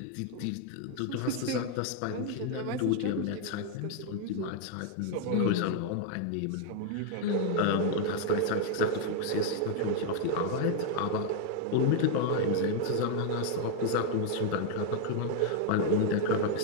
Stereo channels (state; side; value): different; both; correlation 0.00